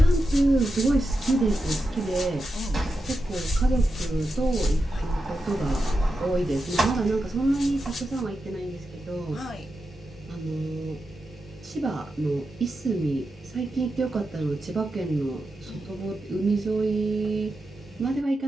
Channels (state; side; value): normal; both; correlation 0.89